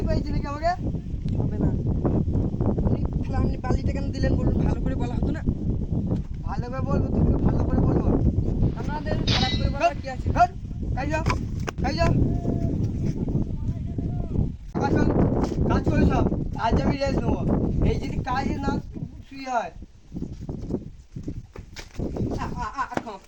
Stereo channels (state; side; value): identical; both; correlation 1.00